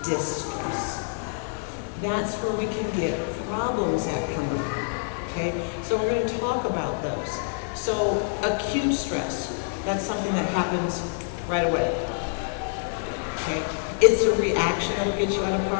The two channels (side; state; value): right; silent; digital silence